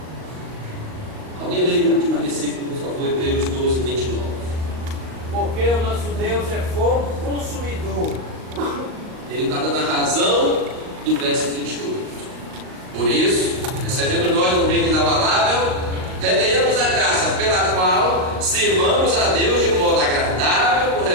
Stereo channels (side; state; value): left; late; 38 ms